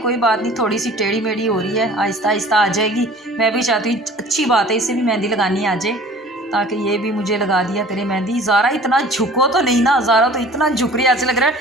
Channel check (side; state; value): both; normal; correlation 0.47